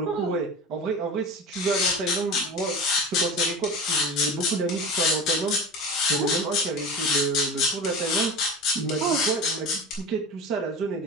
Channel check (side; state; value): both; normal; correlation 0.30